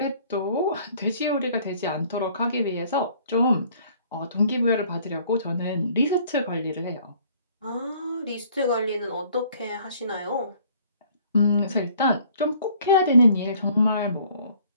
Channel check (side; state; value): both; inverted; correlation -0.58